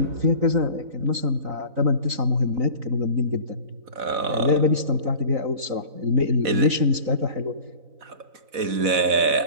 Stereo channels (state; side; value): late; left; 4.1 ms